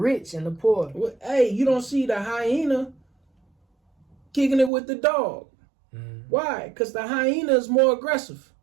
and the poor? Well, hey, you don't see the hyena kicking it with the dog. Why? Because the hyena is more aggressive.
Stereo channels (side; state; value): left; drops out; at 4.7 s